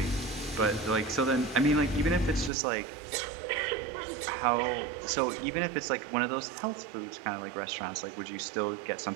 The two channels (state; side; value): drops out; left; at 2.5 s